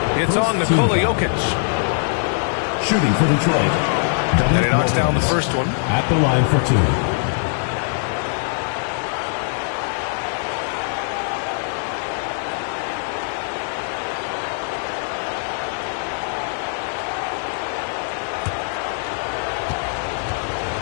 It's on Nikola-Jokic. Shooting for Detroit. And he knocks down the first one. At the line for 2.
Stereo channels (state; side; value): silent; right; 64 dB below the other